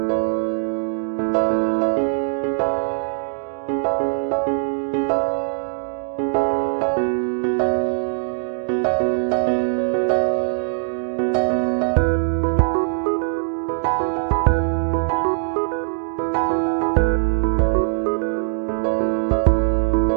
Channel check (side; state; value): left; silent; digital silence